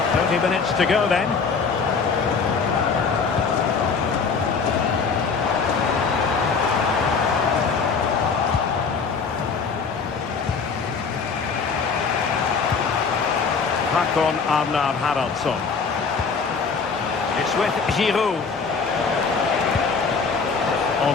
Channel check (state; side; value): quieter; right; 5.2 dB